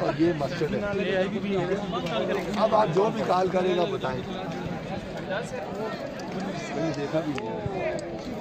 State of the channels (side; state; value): both; identical; correlation 1.00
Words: और ये मस्जिद है। अब आप जो भी कॉल करेगा बताएं। देखा भी नहीं।